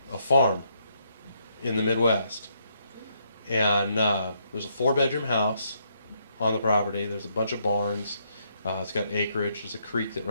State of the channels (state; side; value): inverted; both; correlation -0.75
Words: farm in the Midwest. And there's a 4-bedroom house on the property. There's a bunch of barns. It's got acreage. There's a creek that